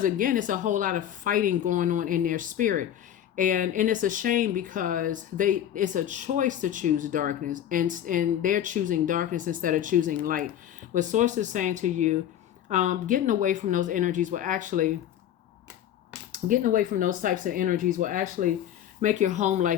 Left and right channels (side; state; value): right; quieter; 10.7 dB